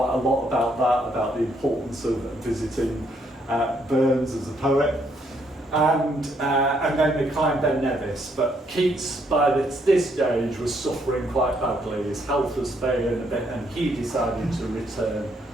a lot about that, about the importance of visiting Burns as a poet. And then they climbed Ben Nevis, but Keats by this stage was suffering quite badly. His health was failing a bit, and he decided to return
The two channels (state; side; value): normal; both; correlation 0.72